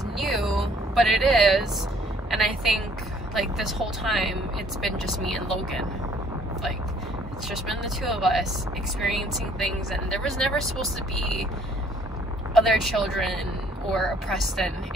new, but it is. And I think like this whole time it's been just me and Logan. Like, it's just been the two of us experiencing things, and there was never supposed to be other children or a Preston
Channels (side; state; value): both; normal; correlation 0.60